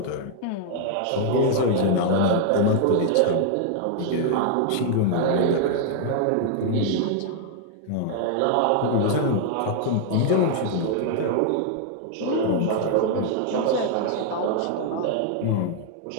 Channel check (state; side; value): different; both; correlation 0.00